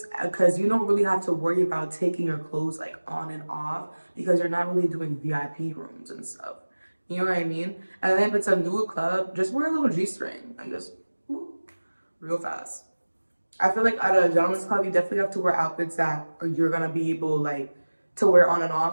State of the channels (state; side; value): inverted; both; correlation -1.00